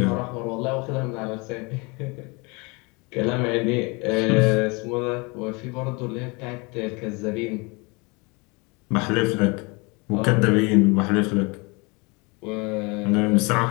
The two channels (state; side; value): quieter; right; 28.3 dB